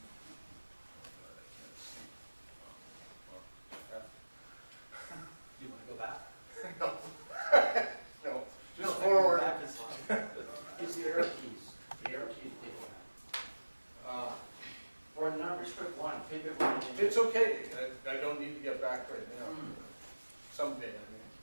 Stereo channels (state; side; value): inverted; both; correlation -1.00